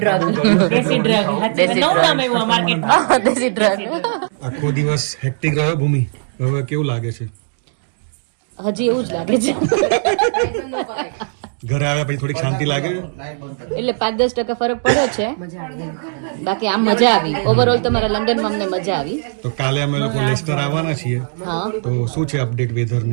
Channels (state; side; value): silent; left; digital silence